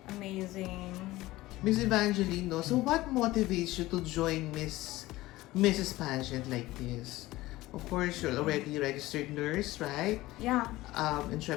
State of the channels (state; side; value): quieter; right; 17.9 dB